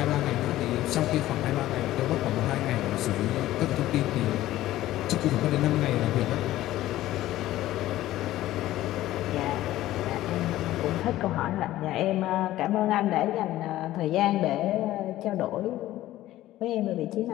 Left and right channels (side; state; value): right; quieter; 14.9 dB